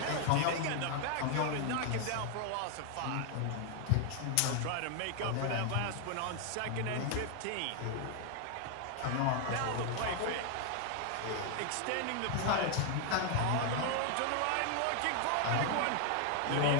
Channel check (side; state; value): both; different; correlation 0.00